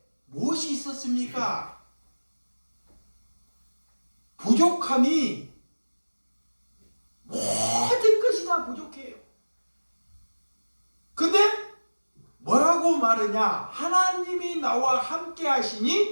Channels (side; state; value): both; inverted; correlation -1.00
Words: 무엇이 있었습니까? 부족함이 모든 것이 다 부족해요. 근데 뭐라고 말하냐? 하나님이 나와 함께